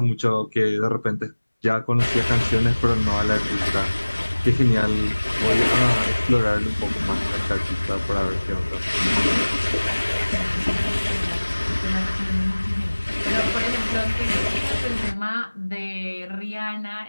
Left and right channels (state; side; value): inverted; both; correlation -1.00